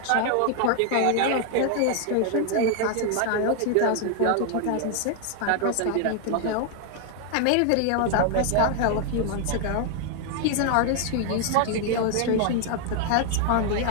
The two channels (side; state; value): both; different; correlation 0.00